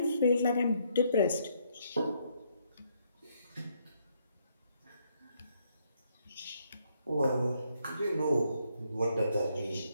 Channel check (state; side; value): inverted; both; correlation -0.72